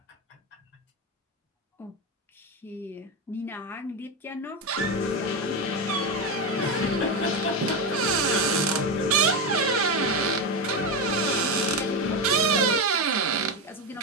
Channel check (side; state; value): both; normal; correlation 0.13